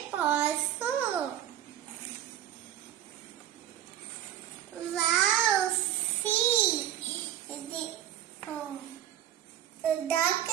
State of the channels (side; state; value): left; quieter; 11.5 dB